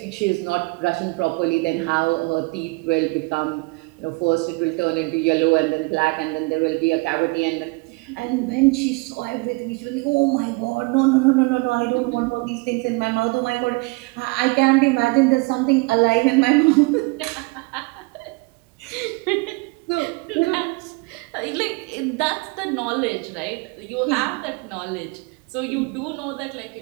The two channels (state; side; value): quieter; left; 27.5 dB